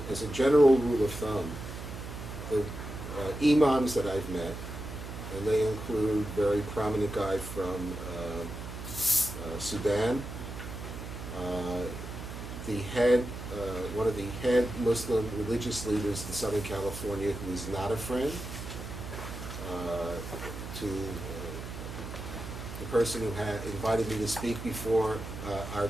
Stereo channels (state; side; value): noise; right; hum, 9 dB below the sound